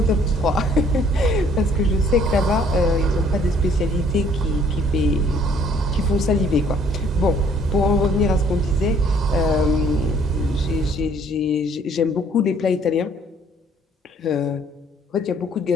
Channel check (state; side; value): normal; both; correlation 0.60